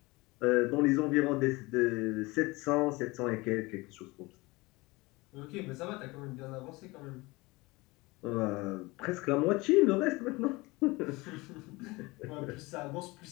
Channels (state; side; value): quieter; right; 23.0 dB